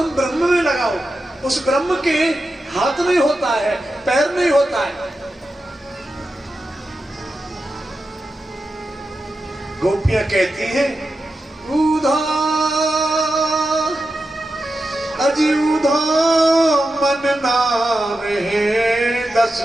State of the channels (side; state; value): both; normal; correlation 0.90